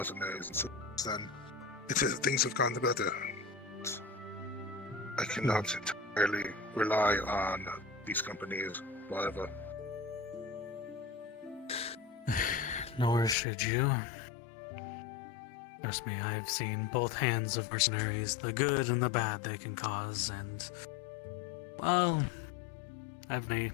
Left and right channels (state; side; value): drops out; right; at 13.4 s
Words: And since then, things have gone better. I cannot entirely rely on these companies forever. Nor should you. Trust me, I've seen both hands of mercenaries, the good and the bad they can cause, and, well, having a